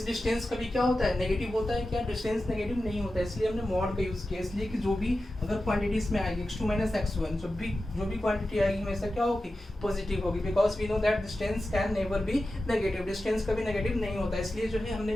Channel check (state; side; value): normal; both; correlation 0.93